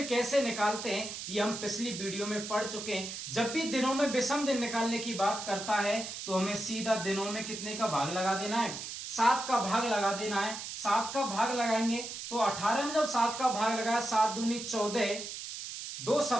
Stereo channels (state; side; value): noise; right; hiss, 8 dB below the sound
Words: कैसे निकालते हैं ये हम पिछली वीडियो में पढ़ चुके हैं। जब भी दिनों में विषम दिन निकालने की बात करता है तो हमें सीधा दिनों में कितने का भाग लगा देना है, 7 का भाग लगा देना है। 7 का भाग लगाएंगे तो 18 में जब 7 का भाग लगाया, 7 दूनी 14, 2